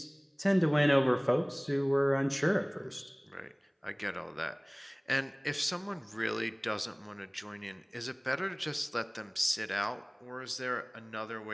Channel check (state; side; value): identical; both; correlation 1.00